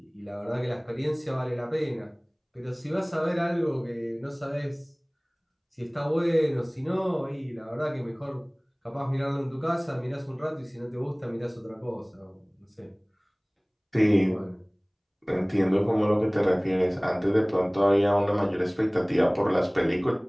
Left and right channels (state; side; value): identical; both; correlation 1.00